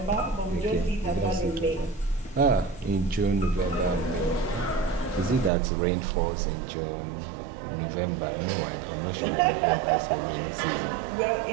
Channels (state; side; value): drops out; left; at 5.5 s